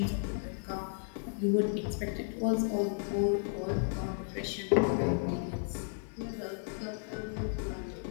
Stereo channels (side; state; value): right; silent; 55 dB below the other